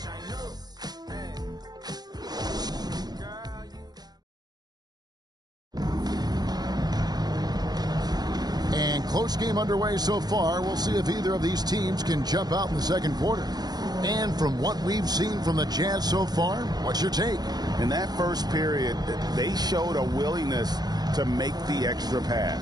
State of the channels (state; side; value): late; left; 0.19 ms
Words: Close game underway so far. We'll see if either of these teams can jump out in the second quarter. And from what we've seen from the Jazz so far, what's your take? In that first period, they showed a willingness to make the extra